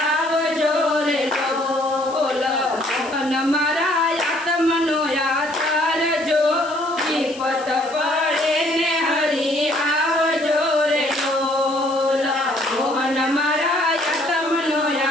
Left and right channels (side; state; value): left; noise; hiss, 18 dB below the sound